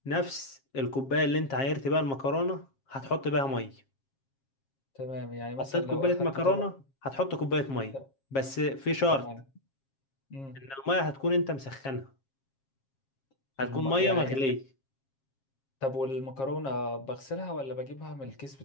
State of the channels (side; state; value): right; late; 7.4 ms